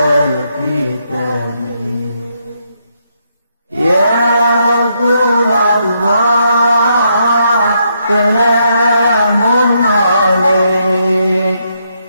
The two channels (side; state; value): both; inverted; correlation -0.77